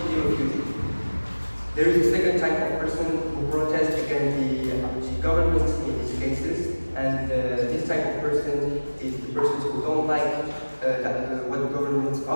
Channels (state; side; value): inverted; both; correlation -1.00